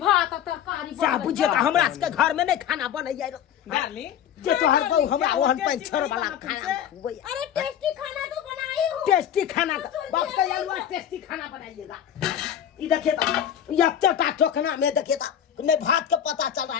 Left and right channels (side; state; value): right; quieter; 9.7 dB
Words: और तरकारी जा बनबै बुझे छै। का हमरा के घर में नहीं खाना बनैया रो डार्लिंग जे तोहर गौ हमरा क्या वो ओहन टेस्टी पंचर नहीं वाला बना खाना तुमसे? खुबैया अरे टेस्टी खाना तो बनाई हूँ। टेस्टी खाना का बाप का अलवा टेस्टी खाना बनाइएगा। ये देखिए तो ये चटा चोखना में देखिए तो नहीं भात का पता चल रहा